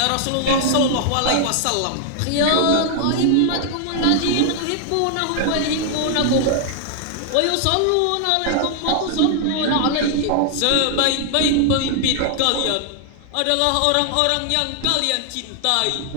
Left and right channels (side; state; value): both; different; correlation 0.00